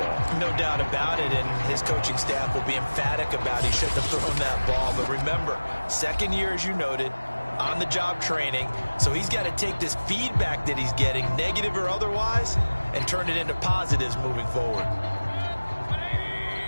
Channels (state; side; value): inverted; both; correlation -1.00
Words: No doubt about it, and his coaching staff will be emphatic about he shouldn't have thrown that ball. But remember, second year, as you noted, on-the-job training, so he's got to take this feedback that he's getting, negative or otherwise, and turn it into positives moving forward.